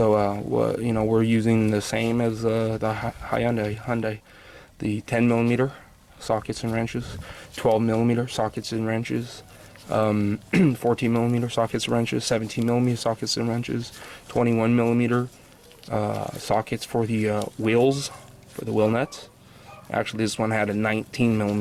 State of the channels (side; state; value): both; identical; correlation 1.00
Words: you know, we're using the same as the Hyundai, the 10 millimeter sockets and wrenches, 12 millimeter sockets and wrenches, 14 millimeter sockets and wrenches, 17 millimeter sockets and wrenches, 21 millimeter sockets for the wheels, for the wheel nuts. Actually, this one had a 19